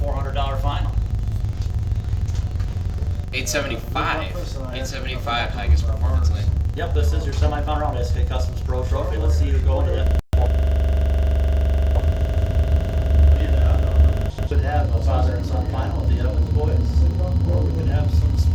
final. 875. 875 highest performance lane. Yep, this is your semifinal round, SK Customs Pro Trophy. Let's see who go to that. Should have a father and son final with the Evans boys. Or we could have some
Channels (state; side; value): identical; both; correlation 1.00